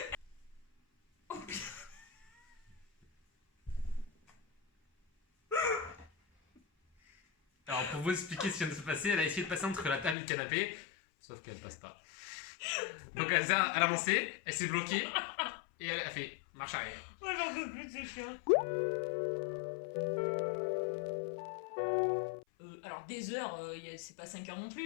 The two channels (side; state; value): right; drops out; at 10.2 s